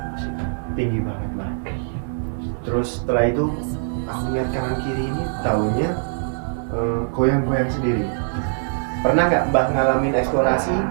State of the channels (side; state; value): left; silent; 64 dB below the other